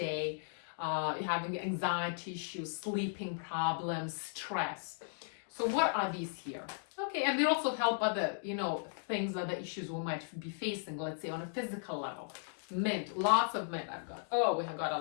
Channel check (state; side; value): silent; right; digital silence